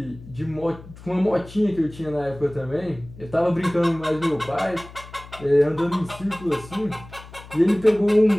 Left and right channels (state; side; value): noise; left; hum, 18 dB below the sound